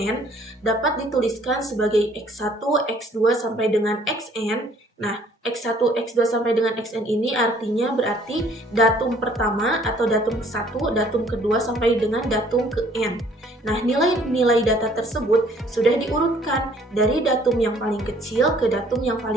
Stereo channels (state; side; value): normal; both; correlation 0.59